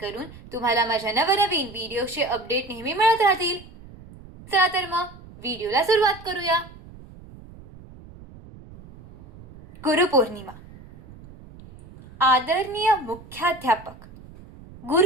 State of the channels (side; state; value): right; noise; rumble, 19 dB below the sound